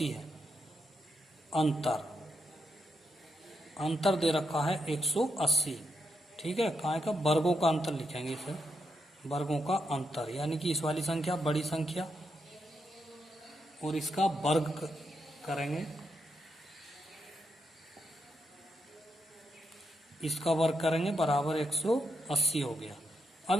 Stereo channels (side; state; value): both; normal; correlation 0.82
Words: है। अंतर दे रखा है 180, ठीक है। काय का वर्गों का अंतर लिखेंगे इसे, वर्गों का अंतर, यानी कि इस वाली संख्या बड़ी संख्या और इसका वर्ग करेंगे, इसका वर्ग करेंगे बराबर 180 हो गया।